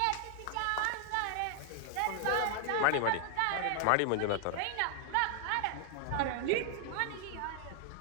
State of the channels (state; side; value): different; both; correlation 0.00